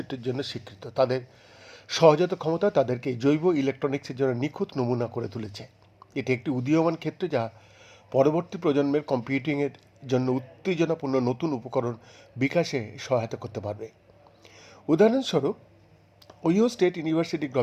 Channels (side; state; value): both; identical; correlation 1.00